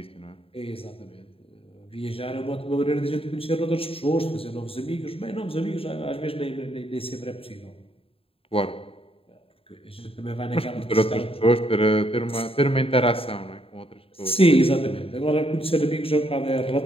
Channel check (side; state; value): right; late; 0.27 ms